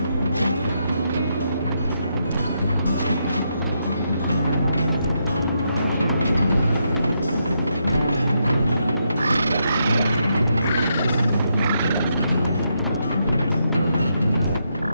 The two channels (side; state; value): both; inverted; correlation -0.80